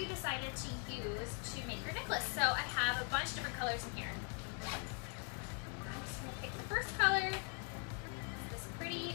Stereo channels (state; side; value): quieter; right; 37.1 dB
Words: decided to use to make your necklace. So I have a bunch of different colors in here. I'm just going to pick the first color. This pretty